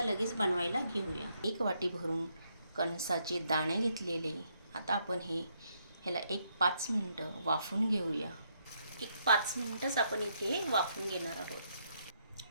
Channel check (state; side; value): inverted; both; correlation -0.75